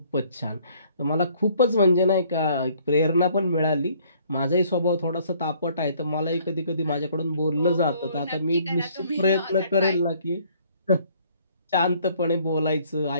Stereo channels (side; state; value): both; inverted; correlation -0.61